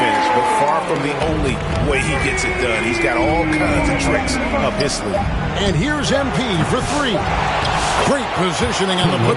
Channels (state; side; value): identical; both; correlation 1.00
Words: finish, but far from the only way he gets it done. He's got all kinds of tricks up his sleeve. And here's MP for 3. Great positioning on the